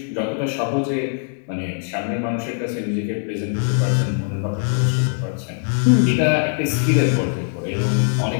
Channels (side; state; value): right; silent; 63 dB below the other